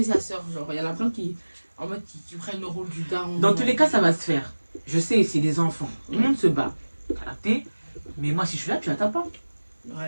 sa soeur, genre, il y en a plein qui, en mode, qui prennent le rôle du daron. Dans tous les cas, ça va se faire. Je sais, c'est des enfants. Tout le monde se bat. T'as capté? Mais moi, si je suis là, tu la tapes pas.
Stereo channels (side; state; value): both; inverted; correlation -1.00